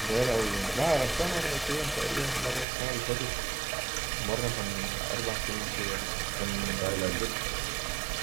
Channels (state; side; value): drops out; left; at 2.7 s